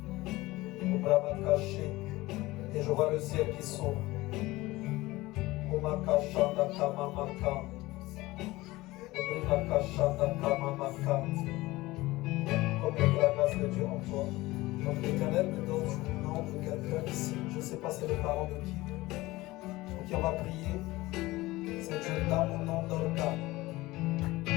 Au bras caché. Et je vois le ciel qui s'ouvre. Comme la grâce de Dieu en toi. Donc l'Éternel me donne le nom de quelqu'un ici. Je ne sais pas c'est le parent de qui. Donc on va prier. Cette jeune dame au nom d'Olga.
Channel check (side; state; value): right; quieter; 19.4 dB